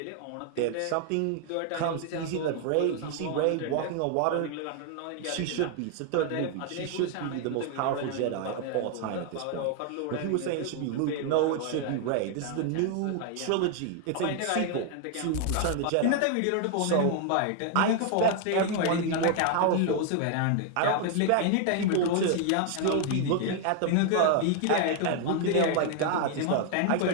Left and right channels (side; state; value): both; different; correlation 0.00